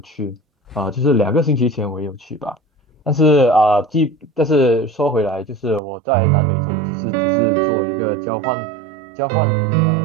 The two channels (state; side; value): drops out; left; at 5.8 s